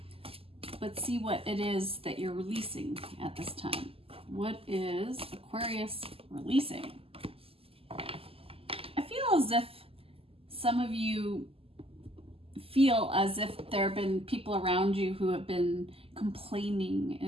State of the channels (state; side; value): late; left; 0.28 ms